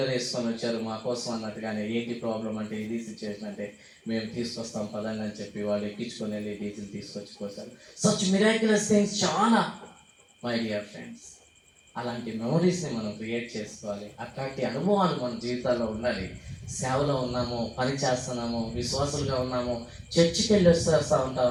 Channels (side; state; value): both; identical; correlation 1.00